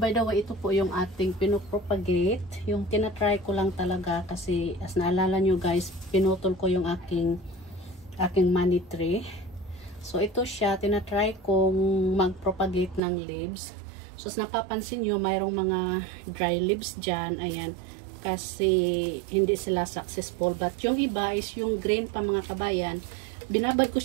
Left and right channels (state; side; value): drops out; left; at 13.0 s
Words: by the way, ito po yung ating pinopropagate. Yung tinatry ko lang talaga kasi as naalala nyo guys, pinutol ko yung aking money tree. So, ito siya. Tinatry kong mag-propagate ng leaves. So, as napapansin nyo, mayroong mga dry leaves dyan. Ayan. Kasi hindi sila successful. But yung iba is yung green pa mga kabayan. Binabad ko